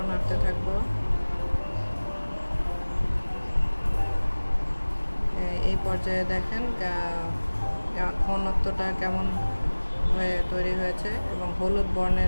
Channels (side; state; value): both; inverted; correlation -1.00